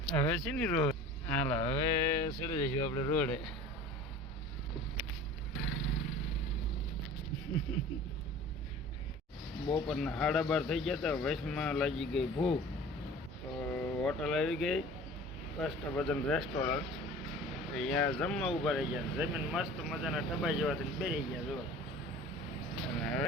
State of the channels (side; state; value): both; normal; correlation 0.42